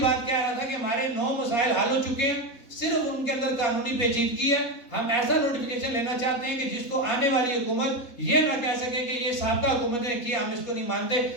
بات کہہ رہا تھا کہ ہمارے 9 مسائل حل ہو چکے ہیں، صرف ان کے اندر قانونی پیچیدگی ہے. ہم ایسا نوٹیفیکیشن لینا چاہتے ہیں کہ جس کو آنے والی حکومت یہ نہ کہہ سکے کہ یہ سابقہ حکومت نے کیا، ہم اس کو نہیں مانتے.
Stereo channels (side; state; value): right; late; 4.2 ms